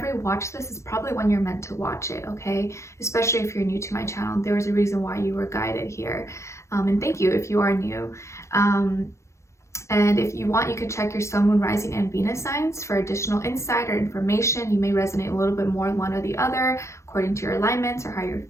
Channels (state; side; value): late; right; 0.14 ms